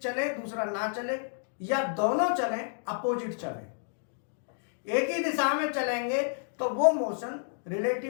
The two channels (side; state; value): right; silent; digital silence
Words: चले दूसरा ना चले, या दोनों चले अपोजिट चले। एक ही दिशा में चलेंगे तो वो मोशन